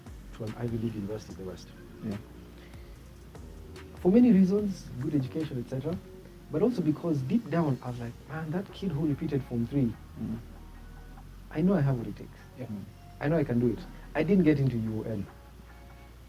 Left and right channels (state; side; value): identical; both; correlation 1.00